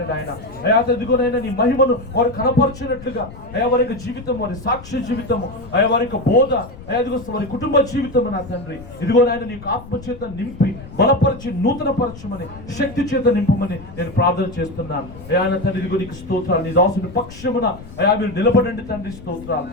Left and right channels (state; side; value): noise; left; rumble, 16 dB below the sound